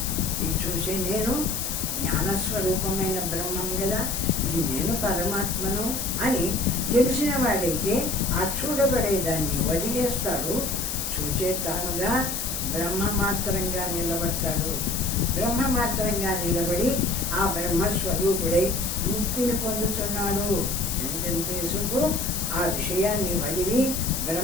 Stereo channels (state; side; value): noise; left; hiss, 3 dB below the sound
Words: ఈ చూసే నేను జ్ఞానస్వరూపమైన బ్రహ్మం కదా, ఈ నేను పరమాత్మను అని తెలిసిన వాడైతే ఆ చూడబడేదాన్ని వదిలేస్తాడు. చూచే తానుగా బ్రహ్మమాత్రంగా నిలబడతాడు. బ్రహ్మమాత్రంగా నిలబడి ఆ బ్రహ్మస్వరూపుడై ముక్తిని పొందుతున్నాడు. ఎంతెంతసేపు ఆ విషయాన్ని వదిలి